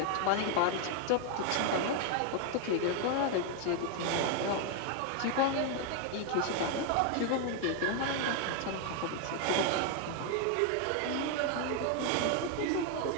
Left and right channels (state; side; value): different; both; correlation 0.01